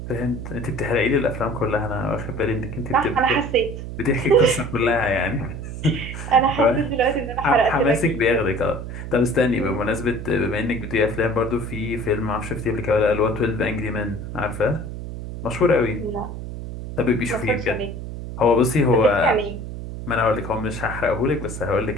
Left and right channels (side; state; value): right; noise; hum, 8 dB below the sound